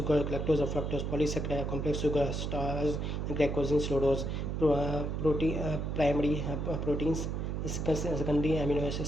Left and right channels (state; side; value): noise; right; hum, 2 dB below the sound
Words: lactose or fructose, polysaccharide, complex sugar, starch, glycogen, sucrose, primary proteins, secondary amino acid